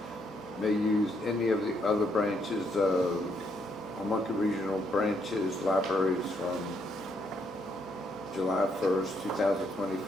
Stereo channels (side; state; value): both; normal; correlation 0.74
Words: may use any of the other branches of Homunculus Regional branches, libraries from July 1st,